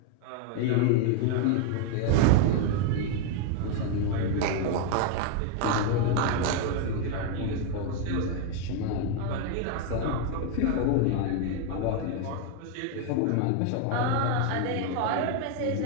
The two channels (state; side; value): different; both; correlation 0.01